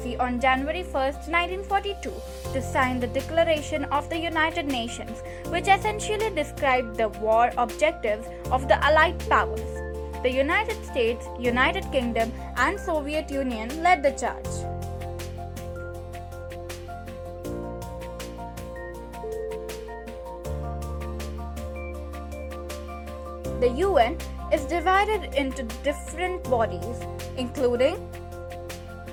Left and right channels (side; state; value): both; identical; correlation 1.00